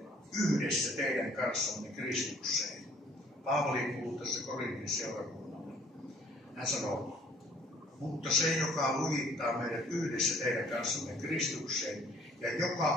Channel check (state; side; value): normal; both; correlation 0.57